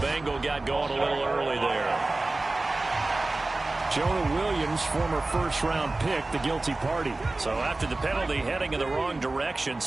got going a little early there. Jonah Williams, former first-round pick, the guilty party. So after the penalty, heading in the wrong direction,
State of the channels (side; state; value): left; quieter; 3.1 dB